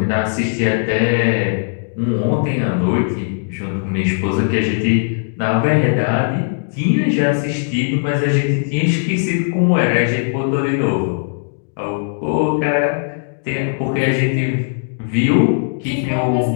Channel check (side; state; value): right; silent; digital silence